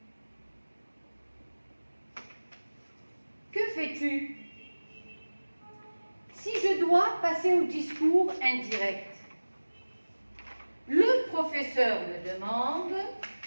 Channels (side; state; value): both; inverted; correlation -1.00